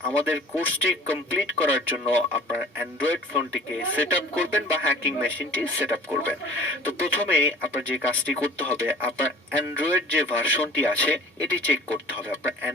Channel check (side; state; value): both; normal; correlation 0.45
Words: আমাদের কোর্সটি কমপ্লিট করার জন্য আপনার অ্যান্ড্রয়েড ফোনটিকে সেট আপ করবেন বা হ্যাকিং মেশিনটি সেট আপ করবেন। তো প্রথমে আপনার যে কাজটি করতে হবে, আপনার অ্যান্ড্রয়েড যে ভার্সনটি আছে এটি চেক করতে হবে। আপনার